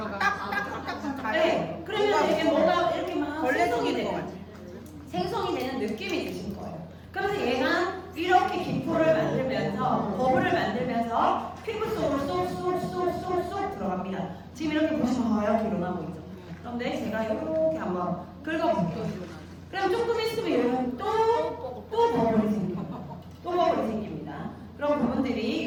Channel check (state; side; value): identical; both; correlation 1.00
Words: 네. 그러면 이게 뭐가 이렇게 막 생성이 되는 느낌이 드신 거예요. 그래서 얘가 이렇게 기포를 만들면서 버블을 만들면서 피부 속으로 쏙쏙쏙쏙쏙 들어갑니다. 지금 이렇게 보시면 하얗게 일어나고 있죠. 그런데 제가 이렇게 한번 긁어볼게요. 그럼 조금 있으면 여러분 또 버블이 생깁니다. 또 버블이 생깁니다. 그런 부분들이